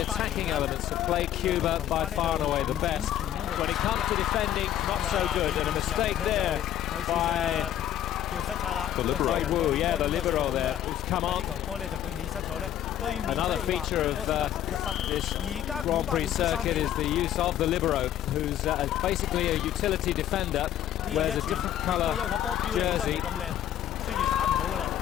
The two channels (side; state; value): right; quieter; 11.4 dB